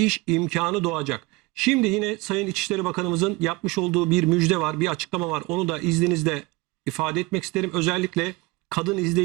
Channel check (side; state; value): left; quieter; 22.7 dB